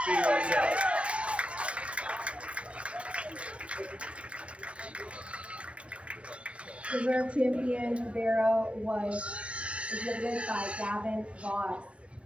Reserve champion Barrow was exhibited by Gavin Voss.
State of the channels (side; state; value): left; late; 0.061 ms